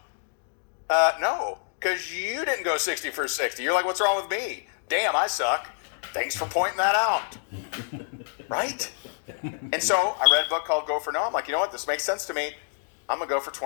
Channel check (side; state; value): right; silent; digital silence